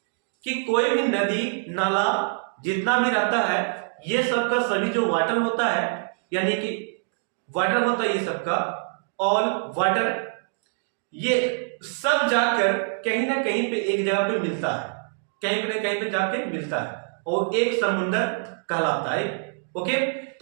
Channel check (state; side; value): silent; left; digital silence